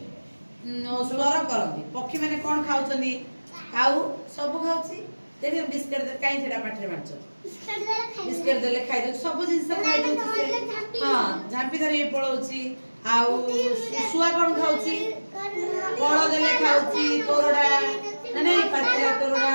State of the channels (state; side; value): inverted; both; correlation -1.00